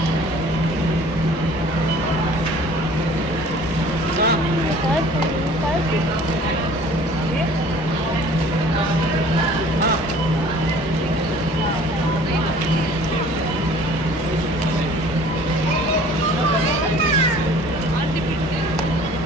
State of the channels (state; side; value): normal; both; correlation 0.50